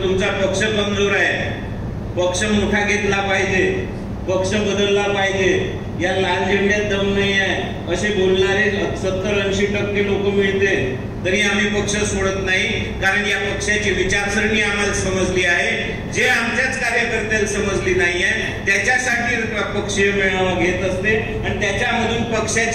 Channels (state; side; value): identical; both; correlation 1.00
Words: तुमचा पक्ष कमजोर आहे, पक्ष मोठा घेतला पाहिजे, पक्ष बदलला पाहिजे, या लाल झेंड्यात दम नाही आहे असे बोलणारे 70-80% लोक मिळते तरी आम्ही पक्ष सोडत नाही. कारण या पक्षाची विचारसरणी आम्हाला समजली आहे, जे आमच्याच कार्यकर्त्याला समजली नाहीये त्याच्यासाठी पक्षीय मेळावा घेत असते आणि त्याच्यामधून